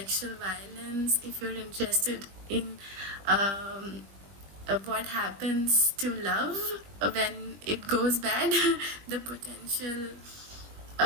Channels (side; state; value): left; late; 20 ms